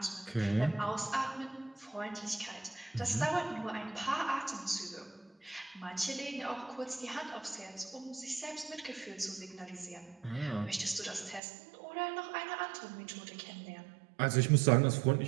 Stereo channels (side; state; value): left; drops out; at 11.4 s